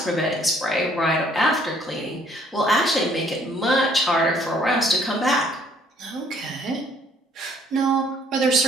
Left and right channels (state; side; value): normal; both; correlation 0.62